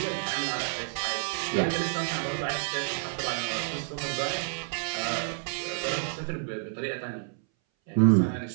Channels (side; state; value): left; silent; 58 dB below the other